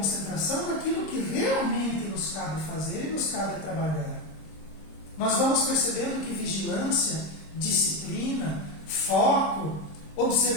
naquilo que realmente nos cabe fazer e nos cabe trabalhar. Nós vamos percebendo que vigilância, disciplina, foco,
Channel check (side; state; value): right; late; 26 ms